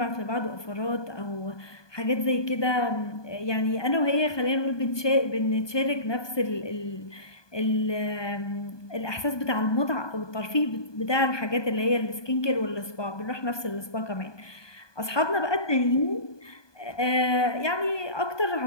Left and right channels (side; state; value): right; late; 1.2 ms